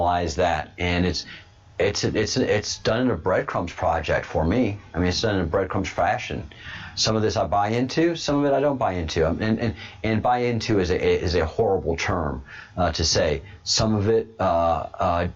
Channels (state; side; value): identical; both; correlation 1.00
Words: that. And it's done in a breadcrumbs project for me. I mean, it's done in a breadcrumbs fashion. Some of this I buy into, some of it I don't buy into. And buy into is a horrible term to say. Some of it